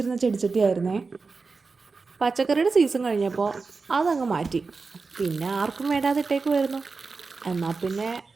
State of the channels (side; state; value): left; quieter; 4.3 dB